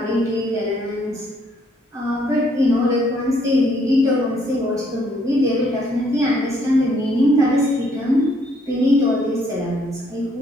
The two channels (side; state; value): both; normal; correlation 0.68